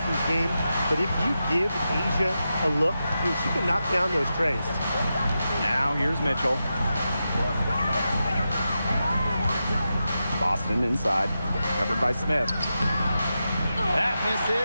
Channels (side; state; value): both; inverted; correlation -0.89